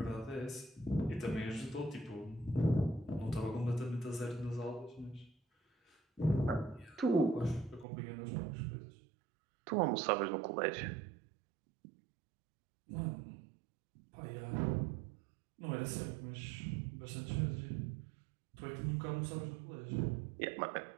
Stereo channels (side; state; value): left; drops out; at 7.9 s